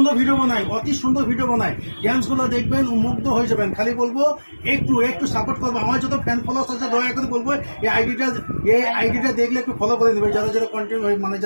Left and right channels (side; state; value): both; inverted; correlation -1.00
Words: ভিডিও বানায়, অতি সুন্দর ভিডিও বানায়। ড্যান্সগুলো দেখবেন, মুগ্ধ হয়ে যাবেন। খালি বলবো একটু সাপোর্ট করবো। আমার যত ফ্যান ফলোয়ার্স আছে দয়া করে বলবো এই আইডিটা দেখলে একটু ফলো করে দেবে। যারা কন্টেন্ট মানে